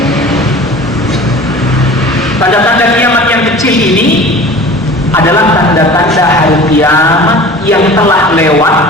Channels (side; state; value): both; normal; correlation 0.40